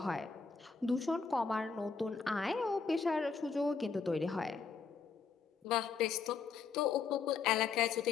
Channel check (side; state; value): right; quieter; 5.3 dB